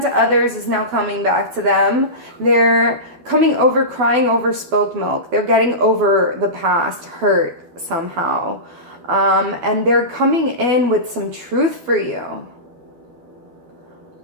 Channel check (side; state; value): left; late; 12 ms